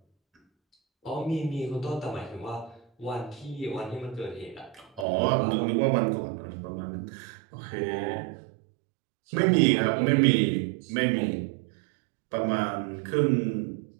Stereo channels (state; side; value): drops out; left; at 5.1 s